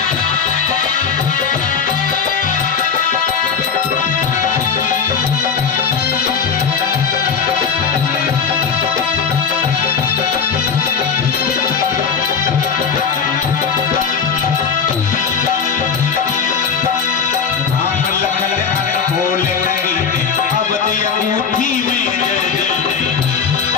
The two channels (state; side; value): quieter; right; 6.2 dB